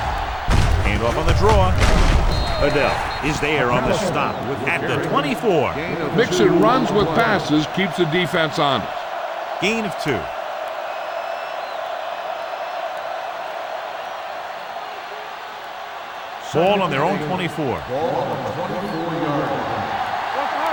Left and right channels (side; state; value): both; identical; correlation 1.00